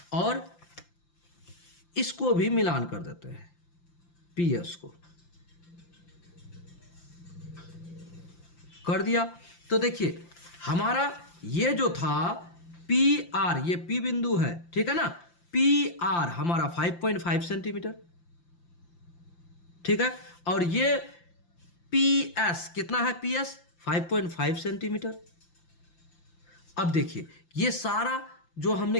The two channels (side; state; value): right; late; 5.8 ms